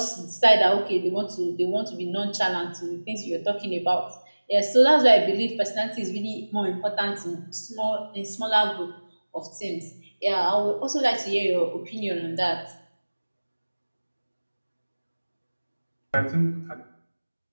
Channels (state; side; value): inverted; both; correlation -1.00